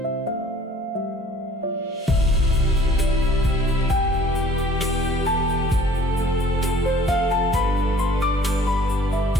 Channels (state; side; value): normal; both; correlation 0.54